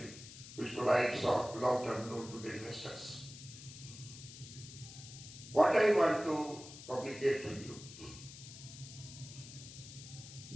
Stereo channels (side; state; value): left; noise; hiss, 14 dB below the sound